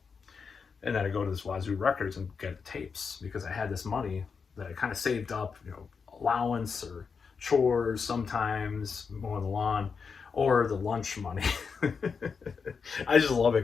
And then I'd go to this Wazoo Records and get tapes because I had this money that I kind of saved up, allowance or chores sometimes, mowing the lawn, or the lunch money. I just love it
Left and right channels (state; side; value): quieter; right; 5.6 dB